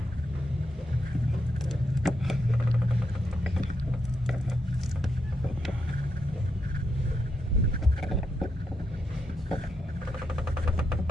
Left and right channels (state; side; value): normal; both; correlation 0.82